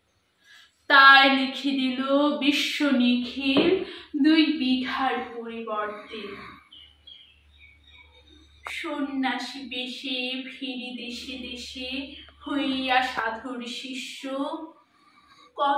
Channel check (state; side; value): identical; both; correlation 1.00